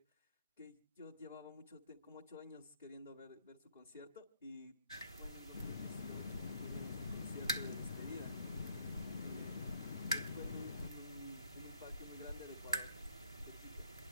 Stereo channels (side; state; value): both; inverted; correlation -0.68